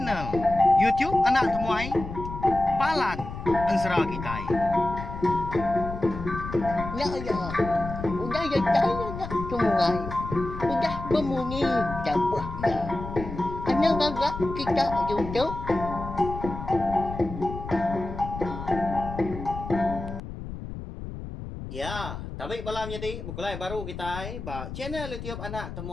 YouTube anak temuai Palan Ansra kita. Ya ya, udah ya saya nak sungai, udah berbunyi cabut ya. Anak agak kita YouTube. Ya, tapi malam jadi bukulai baru kita ba channel YouTube anak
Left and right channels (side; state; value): left; noise; rumble, 9 dB below the sound